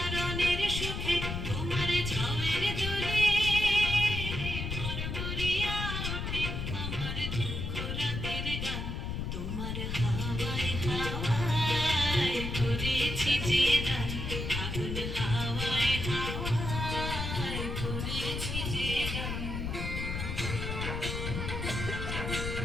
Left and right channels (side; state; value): left; noise; rumble, 3 dB below the sound